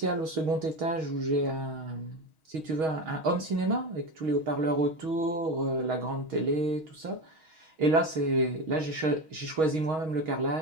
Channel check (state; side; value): late; left; 6.3 ms